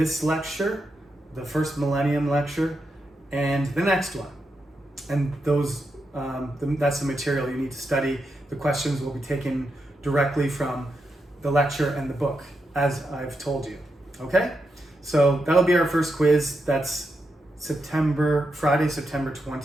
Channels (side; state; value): both; normal; correlation 0.85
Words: lecture, the first millennium lecture, and the next one. And that's the material you need to study. The questions will be taken directly from the lecture and the book, as I've told you. Okay? So that'll be our first quiz. That's Friday, September